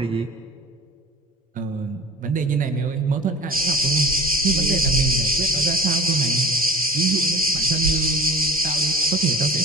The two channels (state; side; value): normal; both; correlation 0.40